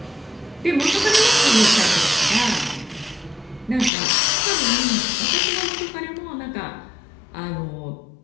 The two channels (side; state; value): right; drops out; at 3.9 s